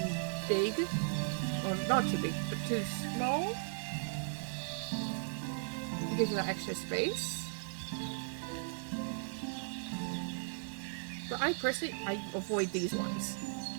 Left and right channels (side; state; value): left; silent; digital silence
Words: big, or not too big, but too small. It gives you that extra space. But I personally, I avoid these ones.